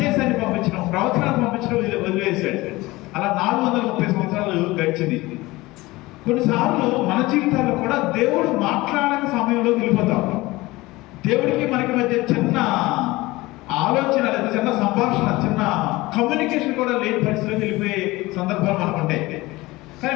పంపించడం, ప్రవచనాలు పంపించడం వదిలేశాడు. అలా 430 సంవత్సరాలు గడిచింది. కొన్నిసార్లు మన జీవితాల్లో కూడా దేవుడు మాట్లాడని సమయంలో వెళ్ళిపోతాం. దేవుడికి మనకి మధ్య చిన్న ఆలోచన లేదా చిన్న సంభాషణ, చిన్న కమ్యూనికేషన్ కూడా లేని పరిస్థితిలో వెళ్ళిపోయే సందర్భాలు మనకు ఉంటాయి. కానీ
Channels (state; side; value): quieter; right; 20.3 dB